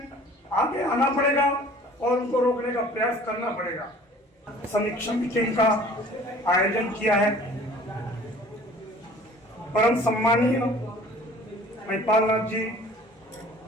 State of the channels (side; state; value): both; normal; correlation 0.48